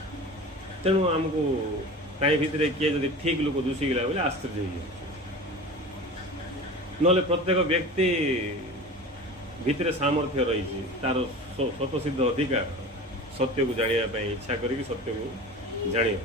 ତେଣୁ ଆମକୁ ତାଇ ଭିତରେ କିଏ ଯଦି ଠିକ୍ ଲୋକ ଦୁଷିଗଲା ବୋଲେ ଆଶ୍ଚର୍ଯ୍ୟ ହେଇଯାଉଛି ନହେଲେ ପ୍ରତ୍ୟେକ ବ୍ୟକ୍ତି ଭିତରେ ସାମର୍ଥ୍ୟ ରହିଛି ତାର ସ୍ୱତଃସିଦ୍ଧ ଅଧିକାର ସତ୍ୟକୁ ଜାଣିବା ପାଇଁ ଇଚ୍ଛା କରିକି ସତ୍ୟକୁ ଜାଣିବା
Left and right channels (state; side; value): normal; both; correlation 0.34